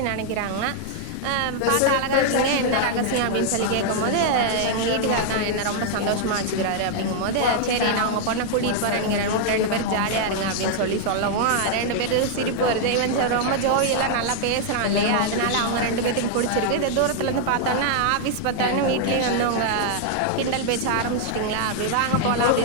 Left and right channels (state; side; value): different; both; correlation 0.00